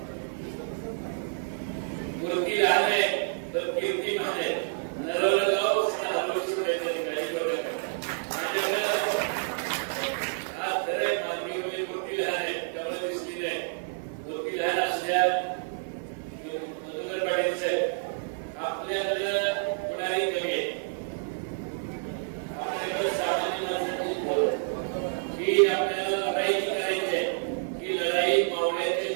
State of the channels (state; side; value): silent; left; 57 dB below the other